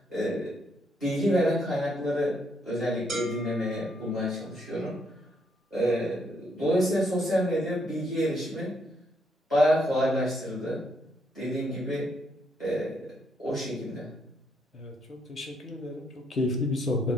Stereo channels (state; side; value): normal; both; correlation 0.74